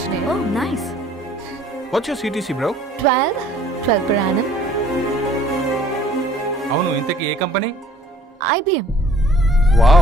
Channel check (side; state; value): both; normal; correlation 0.56